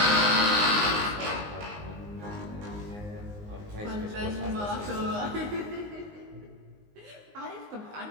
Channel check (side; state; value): left; late; 19 ms